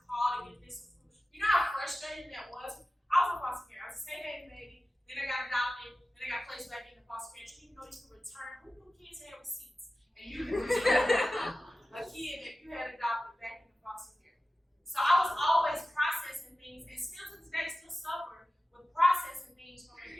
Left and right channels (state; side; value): normal; both; correlation 0.95